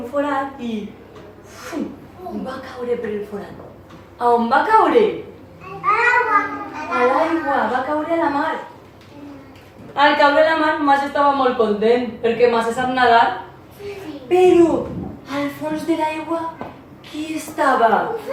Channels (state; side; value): identical; both; correlation 1.00